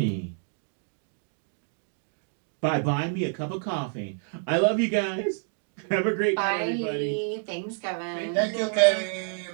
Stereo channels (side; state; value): left; silent; 59 dB below the other